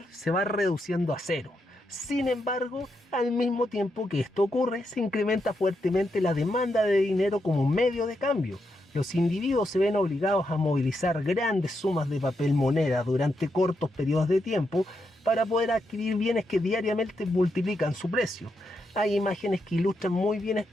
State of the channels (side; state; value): both; normal; correlation 0.82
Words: se va reduciendo a cero. Sin embargo, al mismo tiempo que esto ocurre, se incrementa fuertemente la demanda de dinero como medio de cambio. Los individuos se ven obligados a movilizar grandes sumas de papel moneda durante cortos periodos de tiempo para poder adquirir bienes que diariamente multiplican su precio. Hay imágenes que ilustran muy bien